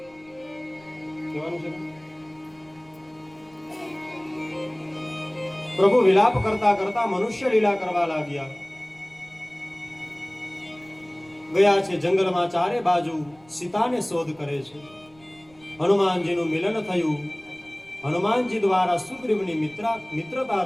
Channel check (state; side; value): noise; right; rumble, 29 dB below the sound